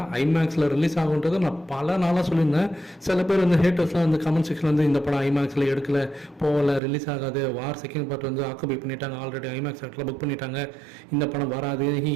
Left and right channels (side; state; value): left; drops out; at 6.8 s